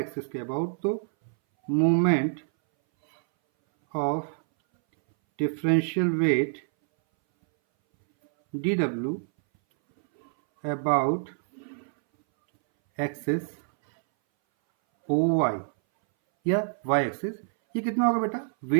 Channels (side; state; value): left; silent; 61 dB below the other